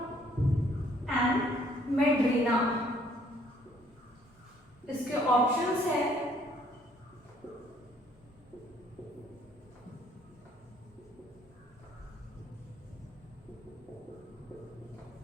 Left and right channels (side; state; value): both; normal; correlation 0.63